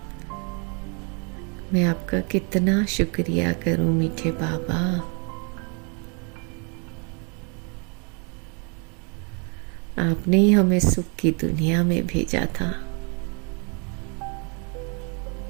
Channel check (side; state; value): left; quieter; 35.8 dB